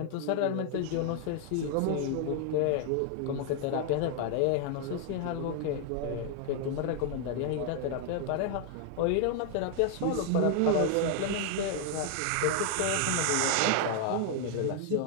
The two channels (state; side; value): different; both; correlation 0.00